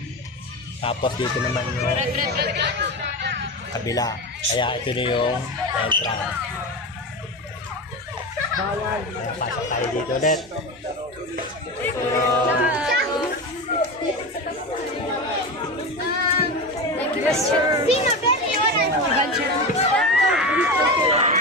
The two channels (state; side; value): normal; both; correlation 0.23